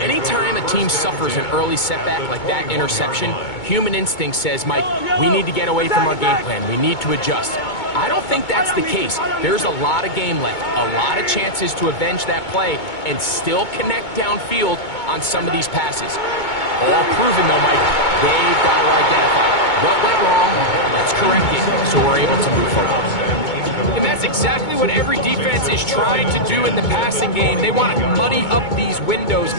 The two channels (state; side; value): late; right; 2.2 ms